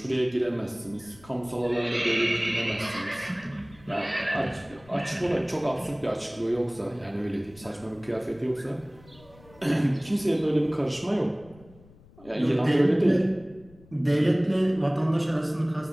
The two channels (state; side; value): noise; left; rumble, 25 dB below the sound